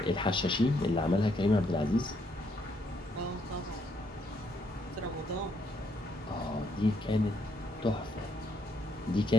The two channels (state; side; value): normal; both; correlation 0.73